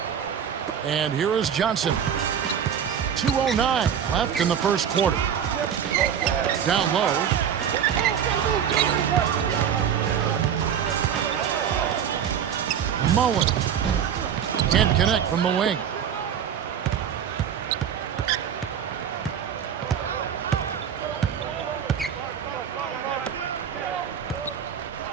And here is Johnson. 2:09 left in the first quarter. Down low. Mullen. Can't connect from the wing.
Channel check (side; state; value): left; quieter; 8.5 dB